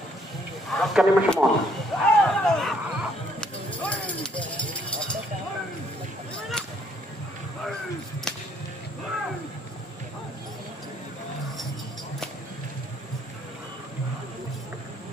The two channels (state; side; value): normal; both; correlation 0.66